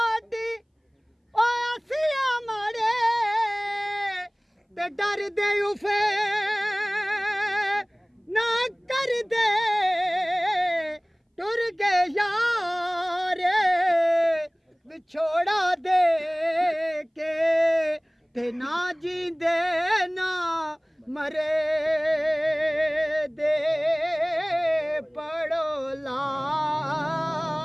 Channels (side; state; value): both; identical; correlation 1.00